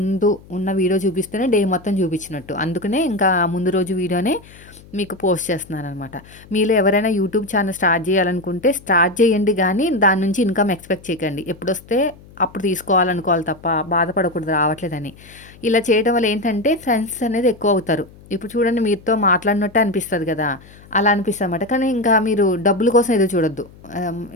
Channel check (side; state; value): left; noise; hum, 23 dB below the sound